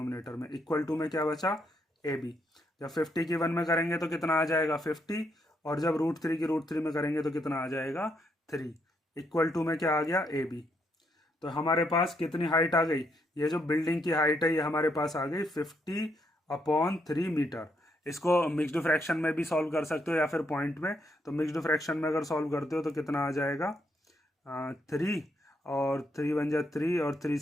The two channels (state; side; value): normal; both; correlation 0.76